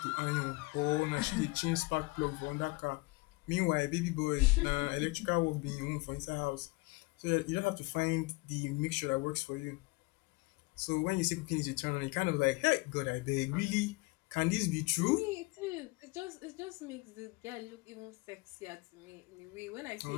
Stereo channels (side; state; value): right; quieter; 25.2 dB